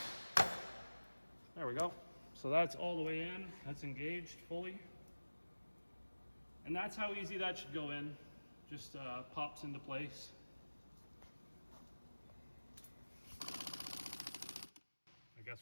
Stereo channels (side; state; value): both; inverted; correlation -1.00